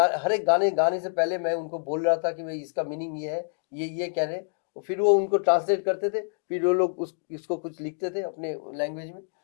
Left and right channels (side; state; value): right; silent; digital silence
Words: हर एक गाने से पहले मैं उनको बोल रहा था कि भाई इसका मीनिंग ये है, ये कह रहे। और फिर वो उनको ट्रांसलेट करते थे, फिर वो लोग इसको कुछ लिखते थे अपने लैंग्वेज में